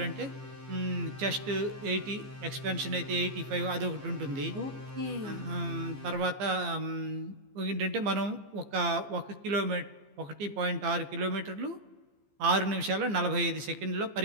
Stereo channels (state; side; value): late; left; 15 ms